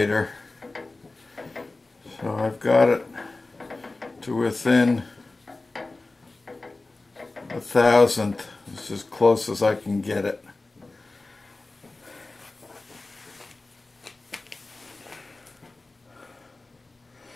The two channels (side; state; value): right; quieter; 3.2 dB